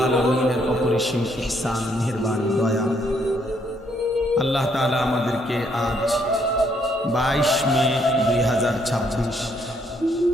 আলামিনের অপরিসীম ইহসান, মেহেরবানি, দয়া। আল্লাহ তাআলা আমাদেরকে আজ 22 মে 2026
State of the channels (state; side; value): normal; both; correlation 0.70